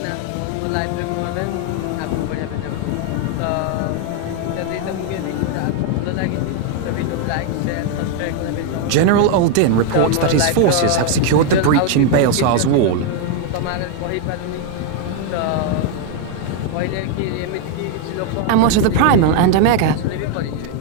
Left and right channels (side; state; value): both; different; correlation 0.00